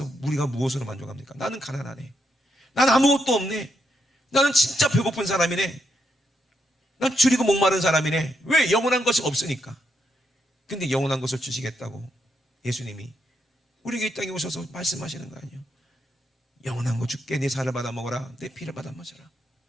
우리가 무엇으로 만족합니까? 나는 가난하네. 난 아무것도 없네. 나는 진짜 배고픈 사람이네. 난 줄이고 목마른 사람이네. 왜? 영원한 것이 없으니까. 근데 영원한 것을 주시겠다고 예수님이 우리에게 이 땅에 오셔서 말씀하시는 거 아니에요? 영원한 거 줄게. 내 살을 받아 먹어라. 내 피를 받아 마셔라.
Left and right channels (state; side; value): normal; both; correlation 0.80